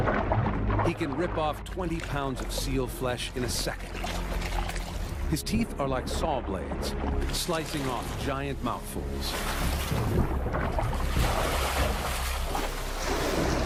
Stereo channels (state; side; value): identical; both; correlation 1.00